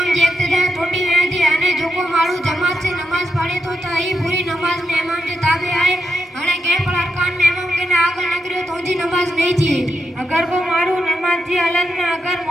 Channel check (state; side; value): normal; both; correlation 0.84